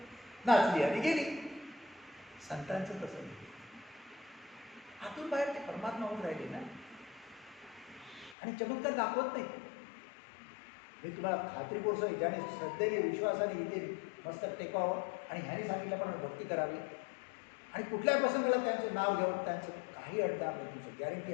नाचली आणि गेली. संतांचं तसं नाही, आतून बाहेर ते परमात्मा होऊन राहिले ना, आणि चमत्कार दाखवत नाही. मी तुम्हाला खात्रीपूर्वक ज्याने श्रद्धेने विश्वासाने इथे मस्त टेकावं आणि ह्याने सांगितलं पण भक्ती करावी आणि कुठल्याही प्रसंगाला त्यांचं नाव घ्यावं, त्यांचं काही अडथळा नाही, तुमचं गॅरंटी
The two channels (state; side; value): drops out; right; at 8.3 s